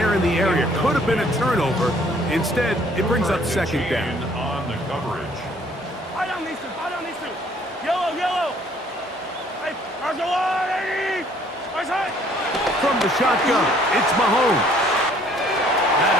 in the area. Could have been a turnover. Instead, it brings up 2nd down. On the coverage. Yellow! From the shotgun, it's Mahomes. That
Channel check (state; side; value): normal; both; correlation 0.60